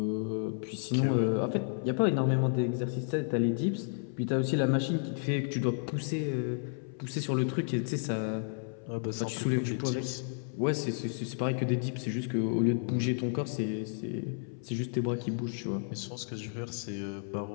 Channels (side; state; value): right; silent; 55 dB below the other